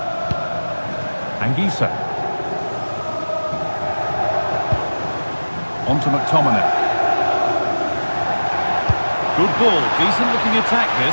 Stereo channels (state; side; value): inverted; both; correlation -1.00